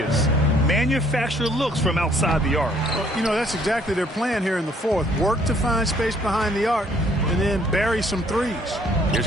Manufacture looks from outside the arc. Well, you know, that's exactly their plan here in the fourth. Work to find space behind the arc and then bury some threes.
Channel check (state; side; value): normal; both; correlation 0.62